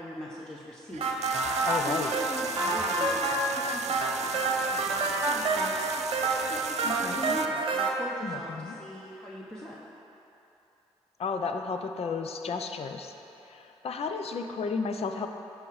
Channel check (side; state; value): both; normal; correlation 0.38